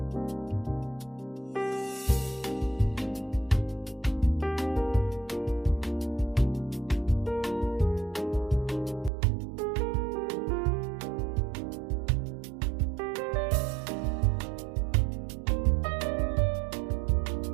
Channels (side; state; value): left; drops out; at 9.1 s